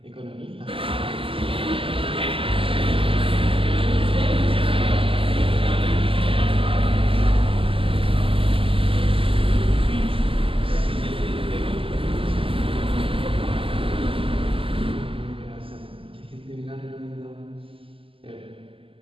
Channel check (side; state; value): left; late; 0.26 ms